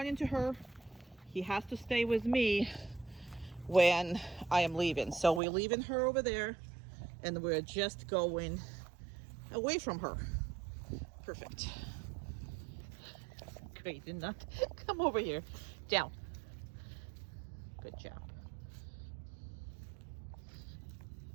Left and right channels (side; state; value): left; drops out; at 5.4 s